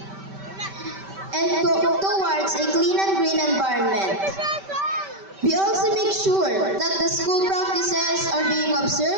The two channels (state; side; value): late; left; 5.2 ms